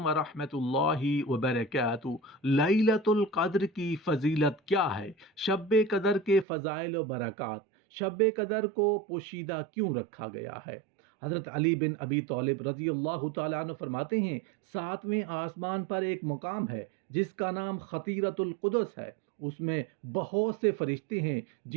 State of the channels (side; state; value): left; drops out; at 6.5 s